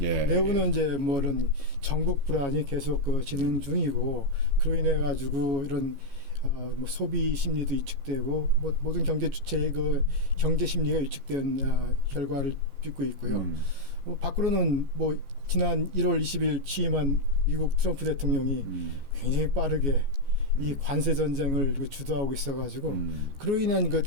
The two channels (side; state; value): left; late; 14 ms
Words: 이제 이런 전국 불안이 계속 진행 중이고 그로 인해 가지고 이런 소비 심리도 위축되고 모든 경제 주체의 경제 심리가 위축된 결과를 빚고 있고요. 밖으로는 지난 1월 20일 취임한 미국 트럼프 대통령이 굉장히 빠르게 이 관세 전쟁을 주도하고 있어가지고 그로 인한